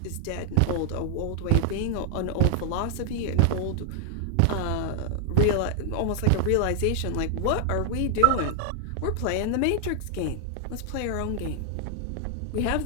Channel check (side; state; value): both; different; correlation 0.00